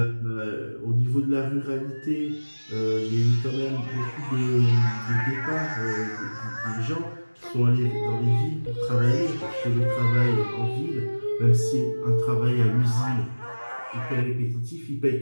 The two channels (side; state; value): both; inverted; correlation -1.00